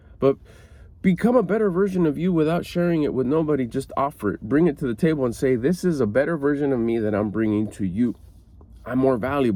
But become a better version of you without sharing it with nobody. Just offer it. Bring it to the table and say, this is a better version of me that I'm bringing to you. I'm more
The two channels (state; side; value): identical; both; correlation 1.00